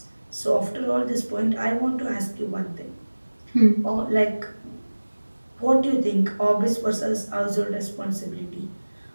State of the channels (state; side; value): inverted; both; correlation -1.00